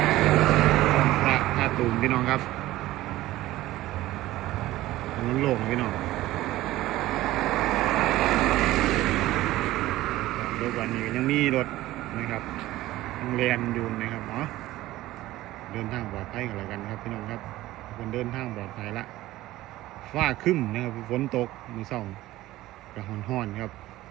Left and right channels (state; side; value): quieter; left; 16.3 dB